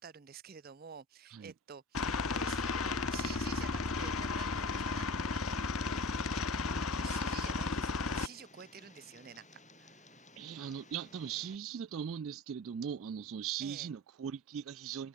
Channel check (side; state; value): both; normal; correlation 0.37